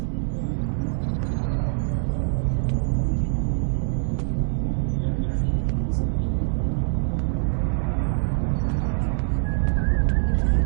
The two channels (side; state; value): left; silent; digital silence